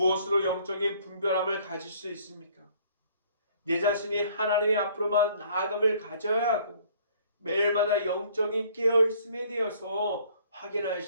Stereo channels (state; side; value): inverted; both; correlation -0.58